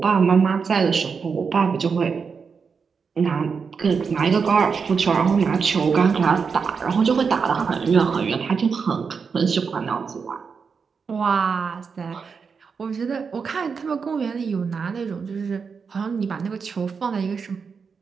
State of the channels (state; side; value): quieter; left; 5.6 dB